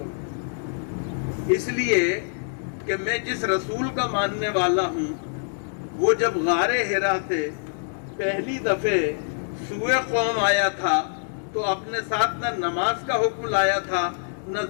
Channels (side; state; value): right; silent; digital silence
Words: اس لیے کہ میں جس رسول کا ماننے والا ہوں، وہ جب غار حرا سے پہلی دفعہ سوئے قوم آیا تھا تو اپنے ساتھ نہ نماز کا حکم لایا تھا، نہ